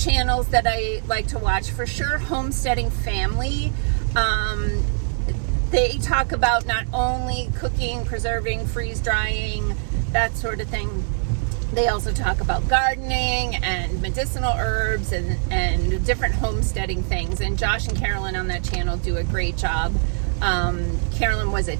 that I like to watch, for sure, Homesteading Family. They talk about not only cooking, preserving, freeze drying, that sort of thing. They also talk about gardening and medicinal herbs and different homesteading things. And Josh and Carolyn on that channel do a great job. Carolyn was a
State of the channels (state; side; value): silent; left; 64 dB below the other